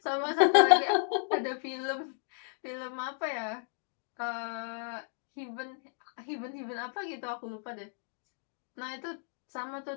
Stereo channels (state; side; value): silent; right; digital silence